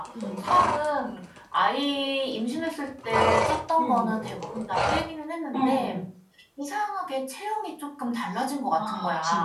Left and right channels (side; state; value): both; identical; correlation 1.00